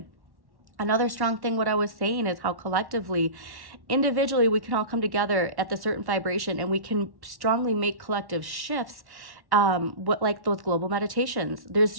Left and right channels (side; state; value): left; late; 1.1 ms